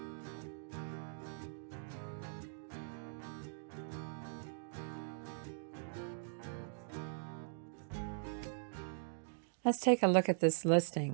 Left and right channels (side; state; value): left; silent; digital silence